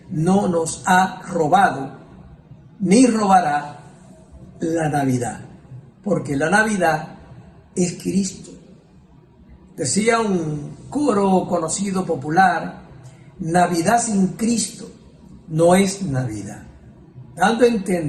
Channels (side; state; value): both; identical; correlation 1.00